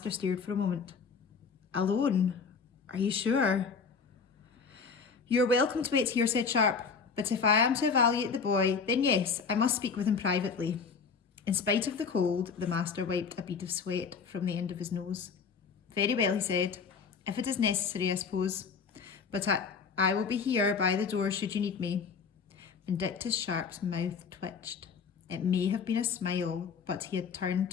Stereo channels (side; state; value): right; quieter; 5.6 dB